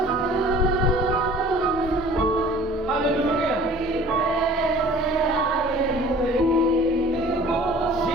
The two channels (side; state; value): both; normal; correlation 0.48